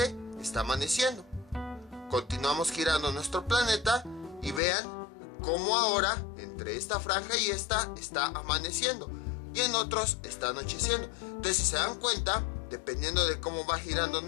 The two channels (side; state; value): right; drops out; at 4.6 s